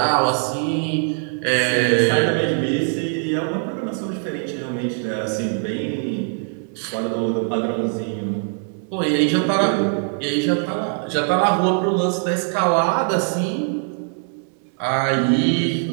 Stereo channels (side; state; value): left; silent; 55 dB below the other